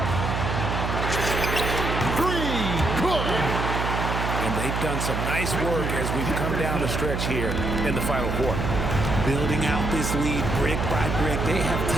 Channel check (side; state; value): right; noise; hum, 2 dB below the sound